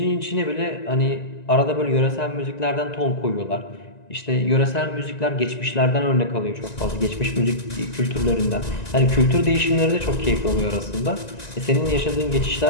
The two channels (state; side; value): late; right; 1.9 ms